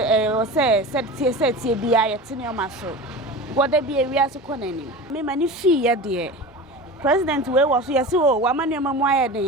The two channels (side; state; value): both; normal; correlation 0.31